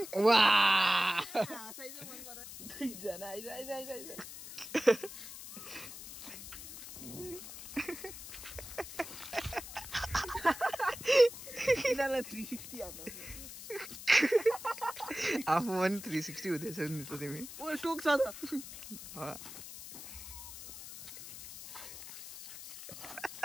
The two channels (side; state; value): left; noise; hiss, 12 dB below the sound